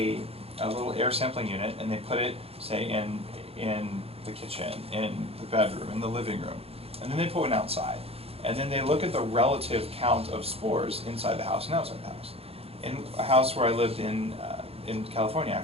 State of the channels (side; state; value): left; late; 0.29 ms